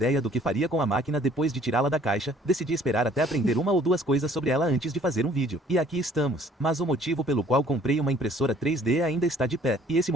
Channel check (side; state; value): both; normal; correlation 0.57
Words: do que faria com a máquina depois de tirá-la da caixa, decidi esperar até aprender uma ou duas coisas sobre ela antes de fazer um vídeo. E aqui estamos. Mas o motivo pelo qual comprei uma impressora 3D ainda está de pé. E esse